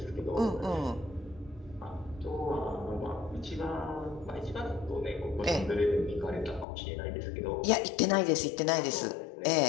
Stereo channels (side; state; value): right; drops out; at 6.7 s